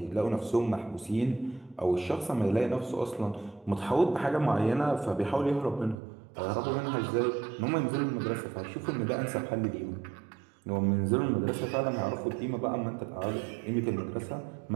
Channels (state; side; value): drops out; left; at 6.0 s